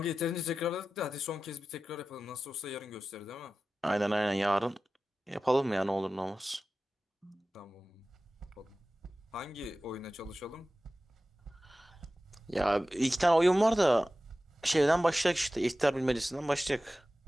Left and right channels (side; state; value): both; normal; correlation 0.95